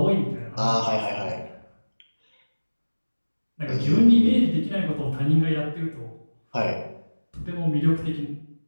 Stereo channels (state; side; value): inverted; both; correlation -1.00